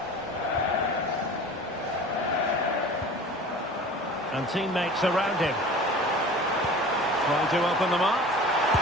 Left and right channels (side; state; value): both; normal; correlation 0.40